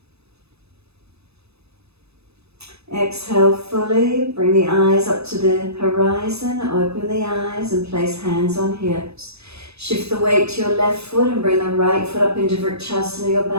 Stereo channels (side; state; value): left; late; 0.79 ms